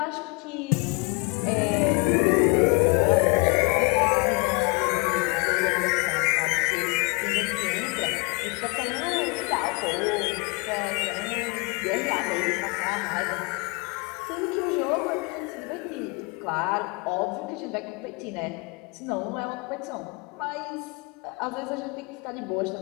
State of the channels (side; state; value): right; quieter; 30.3 dB